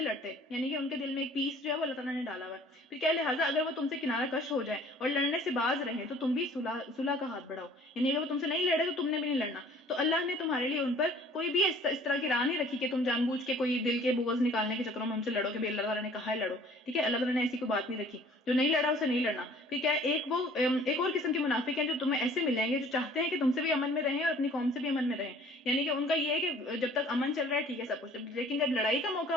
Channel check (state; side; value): normal; both; correlation 0.53